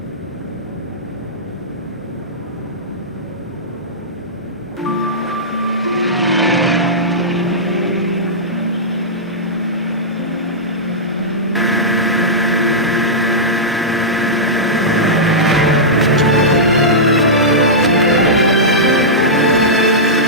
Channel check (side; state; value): both; normal; correlation -0.13